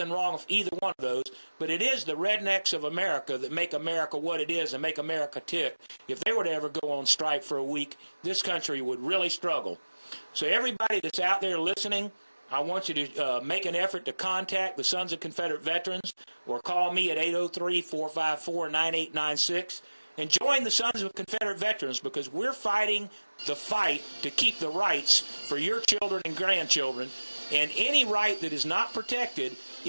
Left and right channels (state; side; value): inverted; both; correlation -1.00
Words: wrong with either one of those, but it is the rednecks of America that make America what it is and make America tick. If they were to ever go on strike for a week, this country would really struggle. So everybody that's out there listening, I want you to make an effort to contact the Sons of Confederate Veterans or call me at 803-454-9896 and join the Sons of Confederate Veterans, because we're fighting the fight to keep the rights for your children and grandchildren, and any right that is not protected